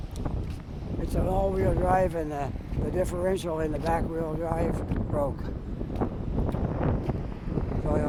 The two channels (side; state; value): both; identical; correlation 1.00